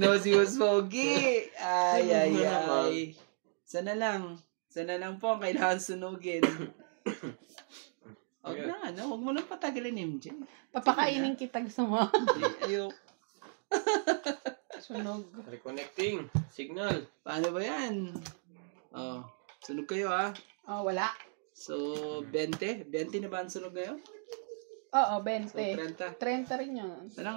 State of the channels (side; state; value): left; silent; 55 dB below the other